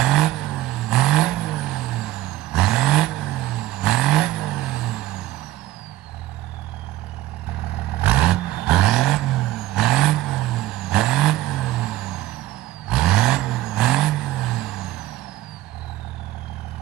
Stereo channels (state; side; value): quieter; left; 15.4 dB